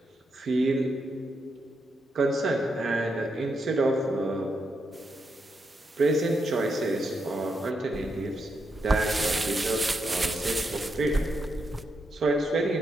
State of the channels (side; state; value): both; normal; correlation 0.82